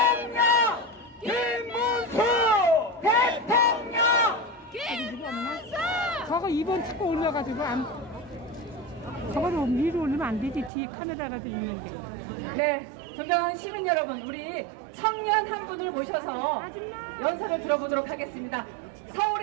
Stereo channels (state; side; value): drops out; left; at 10.7 s